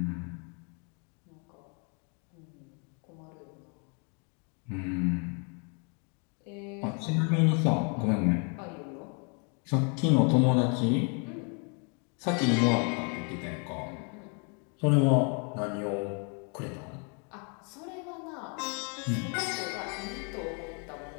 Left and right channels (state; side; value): quieter; right; 37.7 dB